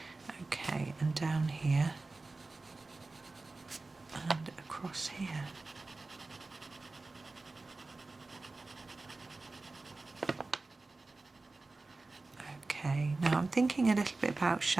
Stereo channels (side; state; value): left; quieter; 3.4 dB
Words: Okay, and down here and across here. Okay, now I'm thinking a little bit about